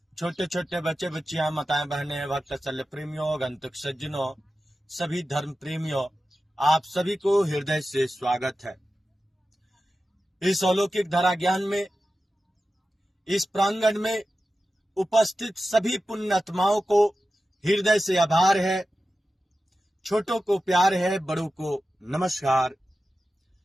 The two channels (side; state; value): both; normal; correlation 0.93